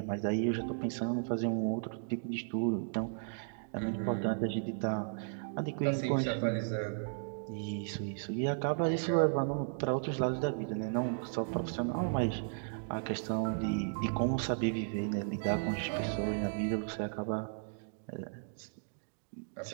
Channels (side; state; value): left; silent; digital silence